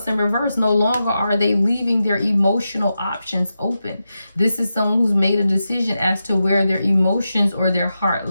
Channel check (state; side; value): inverted; both; correlation -0.89